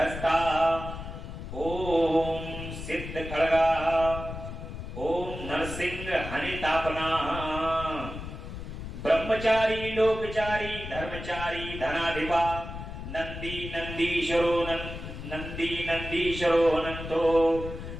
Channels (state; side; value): noise; left; rumble, 9 dB below the sound